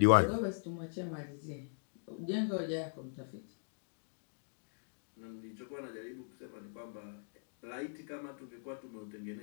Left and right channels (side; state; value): right; silent; digital silence